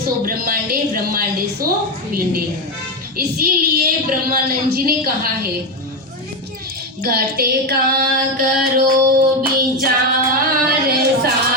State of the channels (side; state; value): both; normal; correlation 0.11